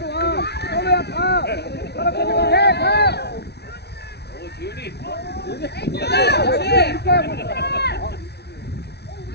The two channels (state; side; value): late; right; 0.49 ms